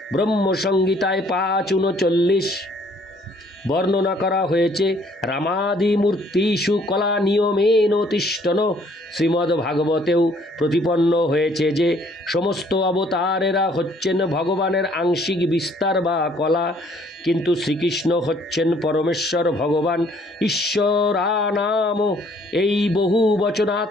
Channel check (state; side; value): normal; both; correlation 0.62